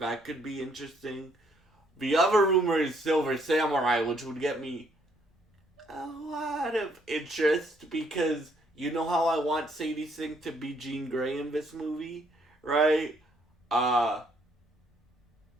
could be interesting. The other rumor is Silver Samurai, which would get me a lot of interest because you know how I want Sadie Sink to be Jean Grey in this movie, right?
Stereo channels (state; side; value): normal; both; correlation 0.68